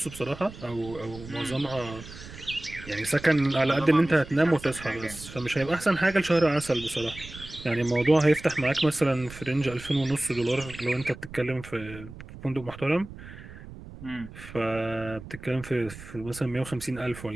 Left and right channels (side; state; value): right; noise; rumble, 15 dB below the sound